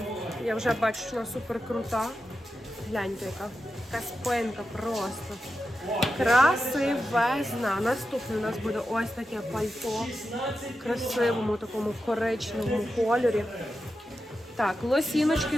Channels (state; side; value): normal; both; correlation 0.90